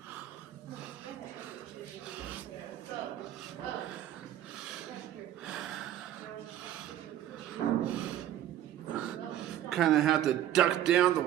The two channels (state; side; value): quieter; left; 11.9 dB